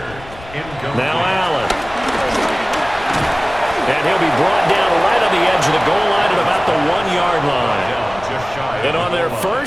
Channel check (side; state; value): left; noise; rumble, 18 dB below the sound